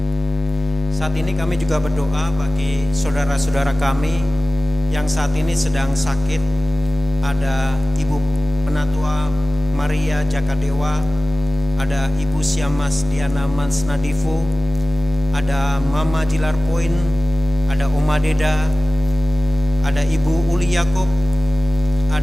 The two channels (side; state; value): both; normal; correlation 0.96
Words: Saat ini kami juga berdoa bagi saudara-saudara kami yang saat ini sedang sakit. Ada Ibu Penatua Maria Jakadewa, ada Ibu Siamas Diana Mansnadifu, ada Mama Jilar Poin, ada Oma Deda, ada Ibu Uli Yakob,